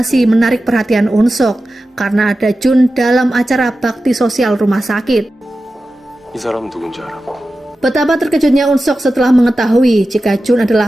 menarik perhatian Unsok karena ada Jun dalam acara bakti sosial rumah sakit. 이 사람 누군지 알아? Betapa terkejutnya Unsok setelah mengetahui jika Jun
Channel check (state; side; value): normal; both; correlation 0.93